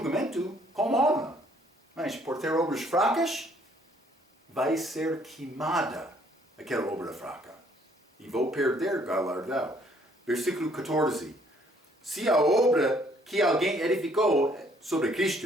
com honra. Mas por ter obras fracas, vai ser queimada aquela obra fraca. E vou perder galardão. Versículo 14. Se a obra que alguém edificou sobre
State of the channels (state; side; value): normal; both; correlation 0.63